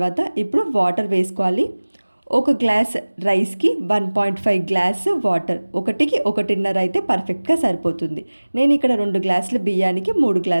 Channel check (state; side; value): inverted; both; correlation -1.00